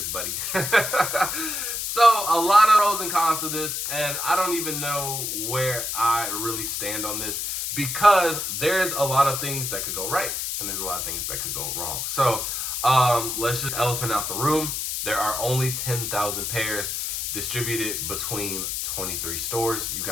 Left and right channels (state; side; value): noise; left; hiss, 2 dB below the sound